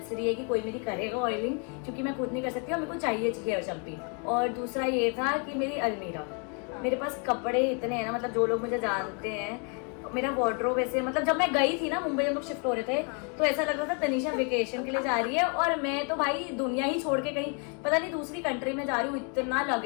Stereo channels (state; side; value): quieter; right; 37.9 dB